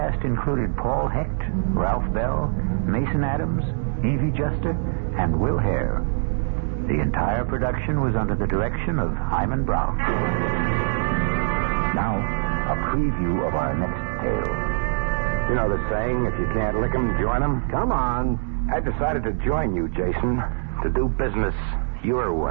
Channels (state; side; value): silent; left; digital silence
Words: included Paul Hecht, Ralph Bell, Mason Adams, Evie Juster, and Will Hare. The entire production was under the direction of Hyman Brown. Now, a preview of our next tale. You know the saying, if you can't lick 'em, join 'em? Come on. I decided to join you, Jason, to do business your